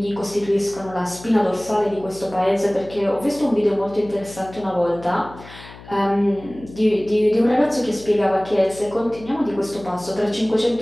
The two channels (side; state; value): left; noise; hum, 18 dB below the sound